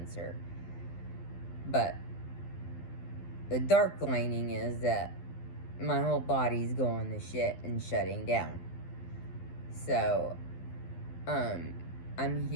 But the dark lining is that my whole body's going to shit and shutting down. So, I'm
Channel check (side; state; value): right; late; 12 ms